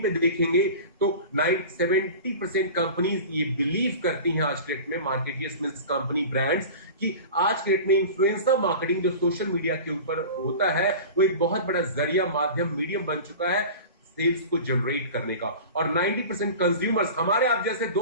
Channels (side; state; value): both; inverted; correlation -0.35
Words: पे देखेंगे तो 70% कंपनीज ये बिलीव करती हैं आज के डेट में, मार्केटियर्स मींस कंपनी ब्रांड्स, कि आज के डेट में इन्फ्लुएंसर मार्केटिंग जो सोशल मीडिया के ऊपर होता है वो एक बहुत बड़ा जरिया, माध्यम, मीडियम बन चुका है सेल्स को जनरेट करने का। और 90% कंज्यूमर्स, हमारे आप जैसे